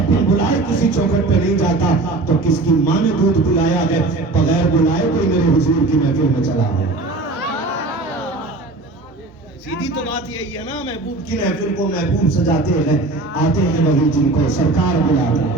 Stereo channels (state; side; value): quieter; left; 3.2 dB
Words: بن بلائے کسی چوکھٹ پہ نہیں جاتا تو کس کی ماں نے دودھ پلایا ہے بغیر بلائے کوئی میرے حضور کی محفل میں چلا ہے. سیدھی تو بات یہی ہے نا, محبوب کی محفل کو محبوب سجاتے ہیں, آتے ہیں وہی جن کو سرکار بلاتا ہے.